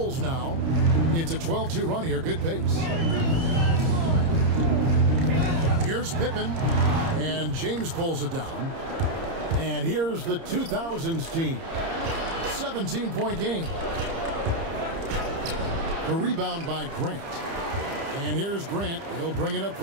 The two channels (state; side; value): late; left; 30 ms